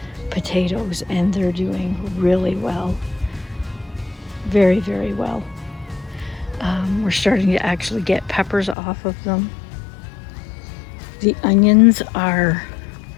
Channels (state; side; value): drops out; right; at 8.8 s